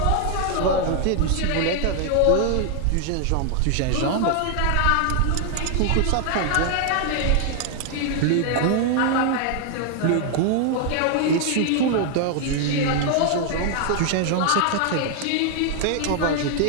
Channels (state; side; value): different; both; correlation 0.00